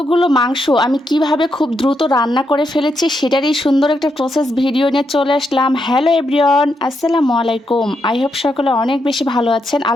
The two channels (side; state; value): both; normal; correlation 0.81